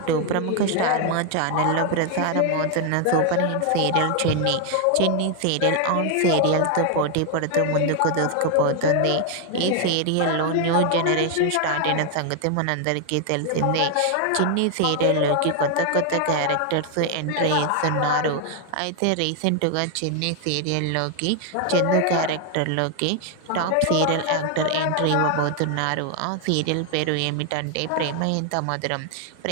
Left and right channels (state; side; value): different; both; correlation 0.01